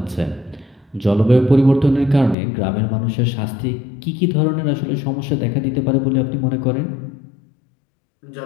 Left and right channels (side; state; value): right; drops out; at 2.4 s